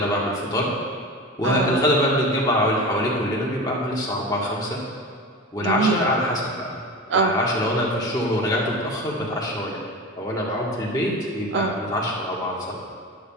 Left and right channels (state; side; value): normal; both; correlation 0.29